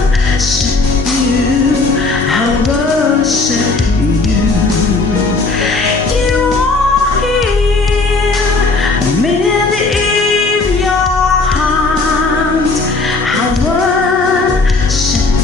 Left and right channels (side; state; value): right; quieter; 3.6 dB